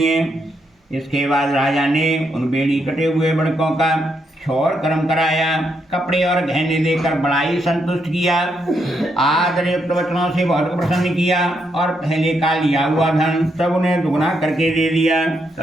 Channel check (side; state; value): both; normal; correlation 0.79